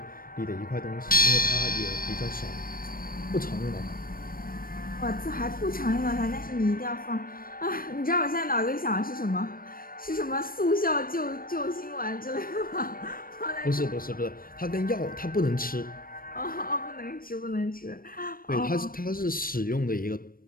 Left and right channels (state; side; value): late; right; 0.41 ms